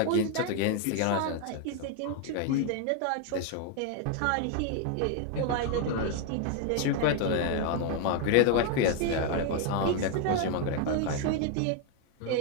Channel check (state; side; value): different; both; correlation 0.01